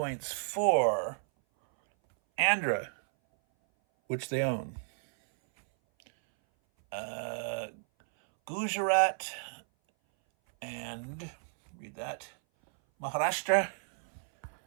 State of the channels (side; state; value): left; silent; 56 dB below the other